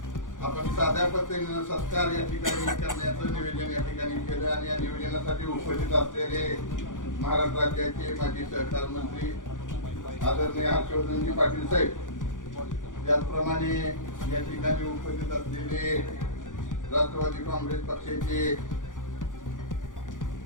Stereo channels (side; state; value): right; late; 0.88 ms